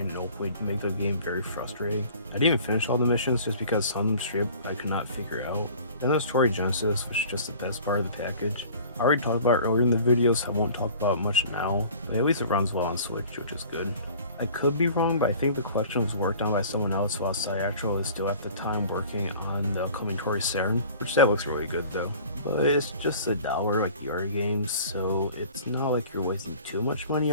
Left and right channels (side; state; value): both; inverted; correlation -0.46